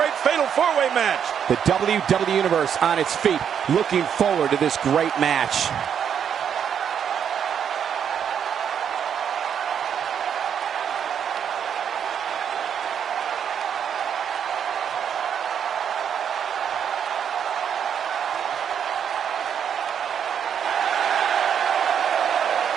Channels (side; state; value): left; quieter; 8.2 dB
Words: fatal four-way match? The WWE Universe on its feet, looking forward to this great match.